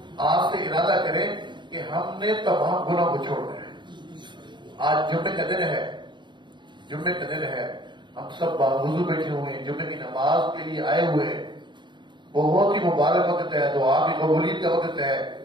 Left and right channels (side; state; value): left; late; 0.22 ms